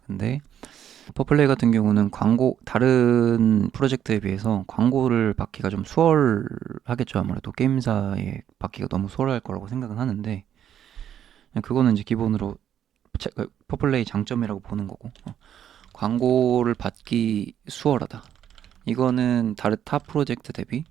근데 퍼플레이 같은 경우는 다른 프로젝트에 비해서 광고를 받기가 좀 수월하겠죠. 아무래도 게임사에 받기가 너무 수월할 거라고 생각은 하는데, 그거는 이제 기본으로 퍼플레이 장점이라고 보는 거고, 광고를 받기 수월하다, 이거는 다른 타 프로젝트 대비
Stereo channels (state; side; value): quieter; left; 9.9 dB